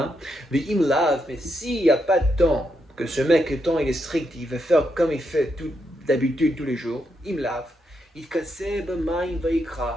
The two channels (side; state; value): both; normal; correlation 0.81